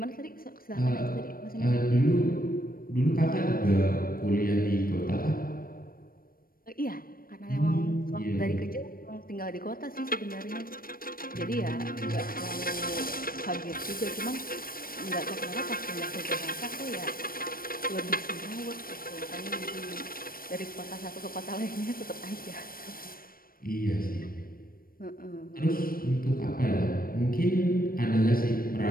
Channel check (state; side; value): late; right; 0.42 ms